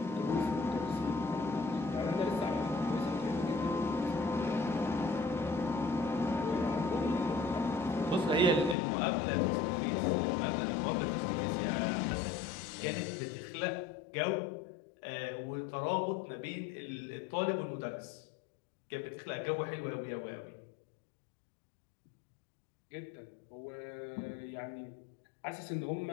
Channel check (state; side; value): drops out; right; at 8.8 s